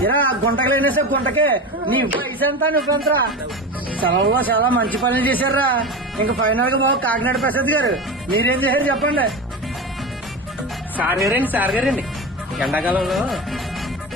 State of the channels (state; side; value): normal; both; correlation 0.26